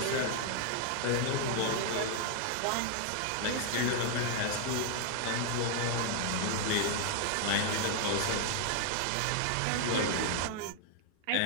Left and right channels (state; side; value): different; both; correlation 0.00